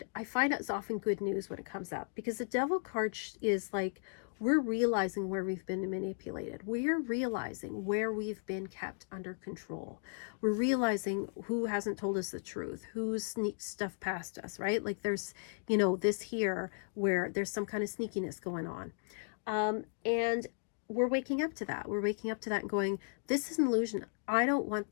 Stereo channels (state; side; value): silent; right; digital silence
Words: I find it's often good news when it comes up, because the Devil card is like, we're realizing where we've been manipulated. We're realizing where we've been kept under control. We're realizing who hasn't told us the truth, who's sneaked stuff past us, right? Like there's, you know, this here where there's some kind of sneakiness going on. And we're waking up to that. We're waking up to that and going, this is an illusion. I don't want